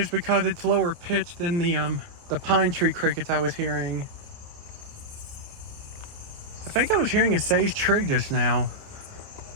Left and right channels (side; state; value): left; late; 28 ms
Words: because it's lower pitched than the pine tree crickets I was hearing. I think I was hearing a sage trig just now.